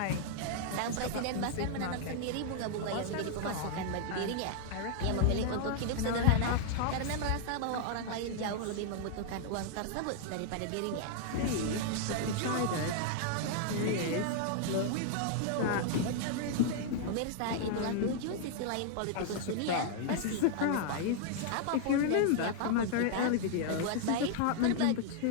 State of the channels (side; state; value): both; different; correlation -0.01